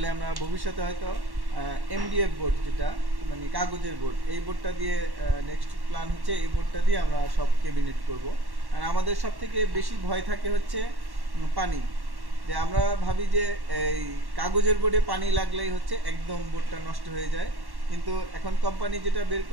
আমরা ভবিষ্যতে হয়তো এমডিএফ বোর্ড, যেটা মানে কাগজের বোর্ড, এই বোর্ডটা দিয়ে নেক্সট প্ল্যান হচ্ছে এই বোর্ডটা দিয়ে আমরা সব ক্যাবিনেট করব। আর আমাদের সব থেকে বেশি ভয় থাকে হচ্ছে পানি। যে আমরা ভাবি যে এই কাগজের বোর্ডে পানি লাগলেই হচ্ছে একদম বোর্ডটা নষ্ট হয়ে যায়, কিন্তু এখন কোম্পানি যেটা বের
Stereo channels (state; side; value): late; left; 1.1 ms